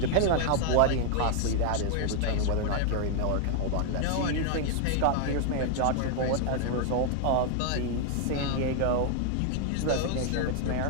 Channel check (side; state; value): both; different; correlation 0.00